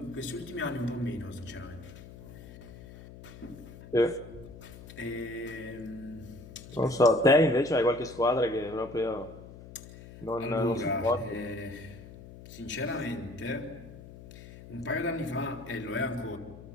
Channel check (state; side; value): noise; left; hum, 16 dB below the sound